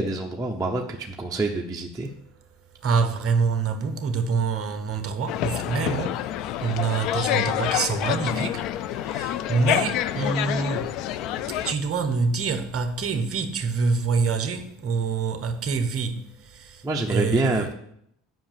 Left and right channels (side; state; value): both; normal; correlation 0.50